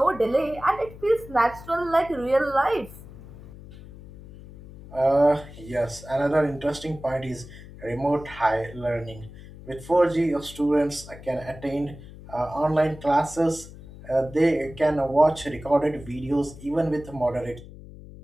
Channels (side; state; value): left; noise; hum, 17 dB below the sound